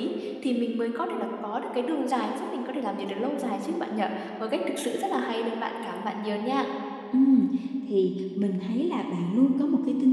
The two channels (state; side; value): identical; both; correlation 1.00